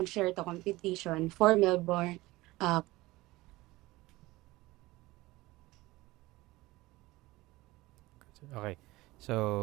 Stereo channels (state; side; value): quieter; left; 19.6 dB